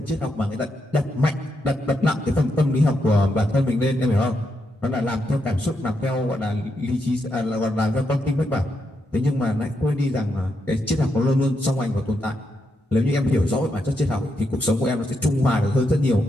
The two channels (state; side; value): normal; both; correlation 0.82